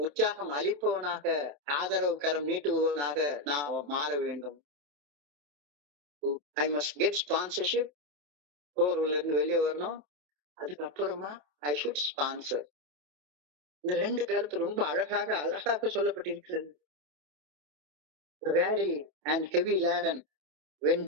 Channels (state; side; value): late; left; 28 ms